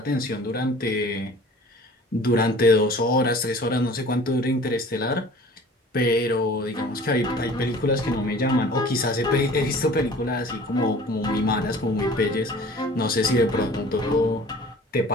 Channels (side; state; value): both; normal; correlation 0.46